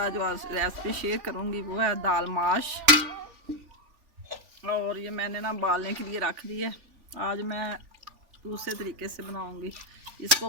जो आज रेसिपी शेयर करूंगी वो है दाल माश। और ये मैंने ना बालने के लिए रख दी है। आज मैं दूसरे तरीके से बनाऊंगी। इसको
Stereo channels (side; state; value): left; late; 3.4 ms